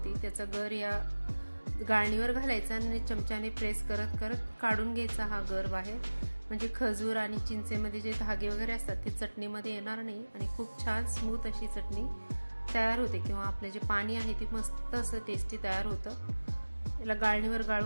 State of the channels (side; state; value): both; inverted; correlation -1.00